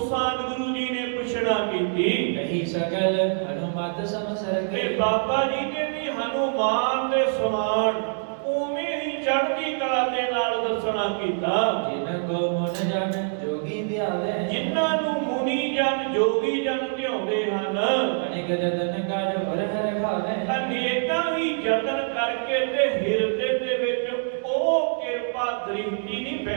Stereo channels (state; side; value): silent; left; digital silence